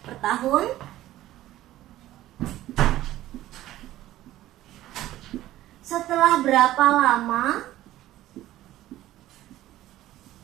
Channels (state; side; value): quieter; left; 14.7 dB